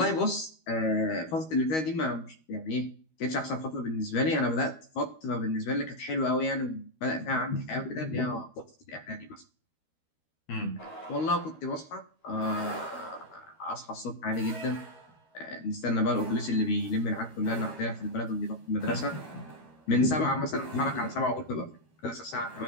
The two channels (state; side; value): late; right; 13 ms